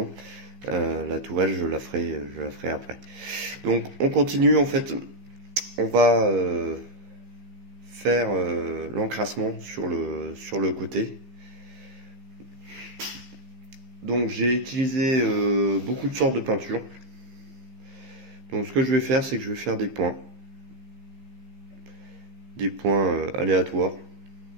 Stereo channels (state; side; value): late; left; 15 ms